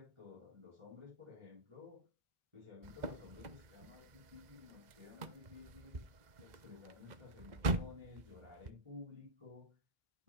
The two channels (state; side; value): late; left; 2.0 ms